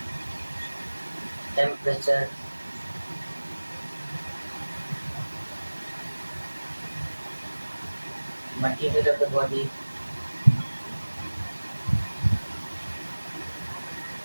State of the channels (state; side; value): inverted; both; correlation -1.00